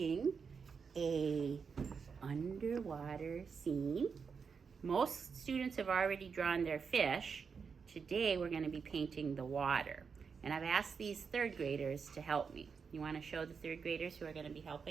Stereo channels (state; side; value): quieter; left; 5.8 dB